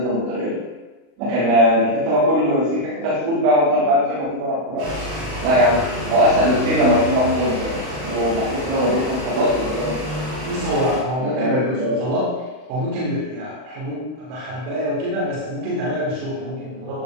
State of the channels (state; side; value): late; left; 39 ms